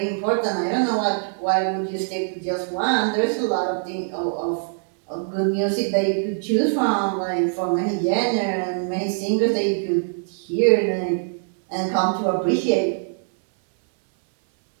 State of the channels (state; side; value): silent; left; 64 dB below the other